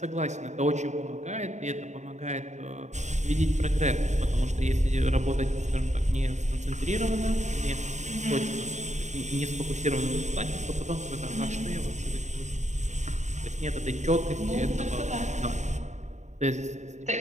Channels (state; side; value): late; left; 0.34 ms